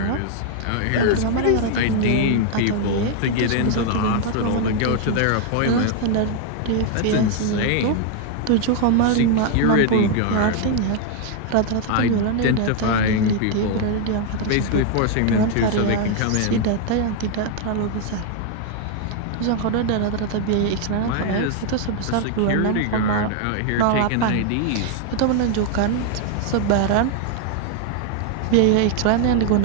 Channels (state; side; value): different; both; correlation 0.00